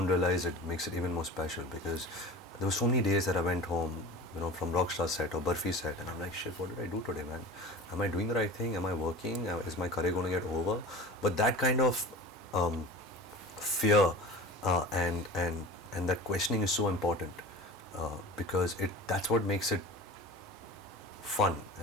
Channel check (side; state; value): both; normal; correlation 0.35